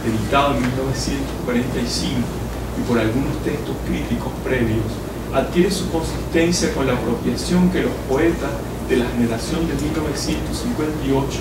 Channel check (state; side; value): identical; both; correlation 1.00